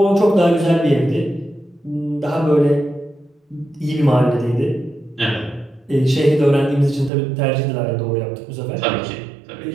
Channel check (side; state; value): left; drops out; at 7.1 s